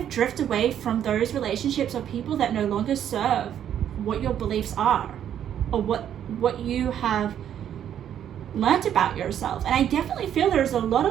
drift away from those relationships or people that no longer serve what your beliefs are, or what you have learned about yourself. And I definitely feel there's a lot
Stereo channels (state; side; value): quieter; left; 9.9 dB